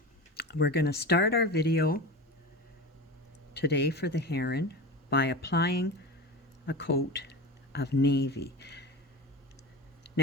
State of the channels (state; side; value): normal; both; correlation 0.28